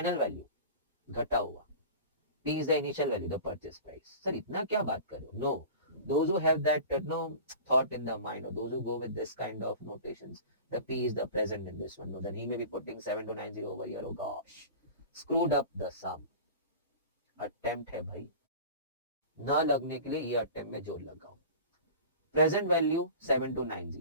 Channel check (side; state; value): both; inverted; correlation -0.37